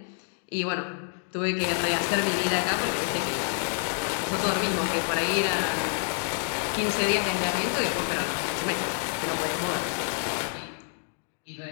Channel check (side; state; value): right; silent; 59 dB below the other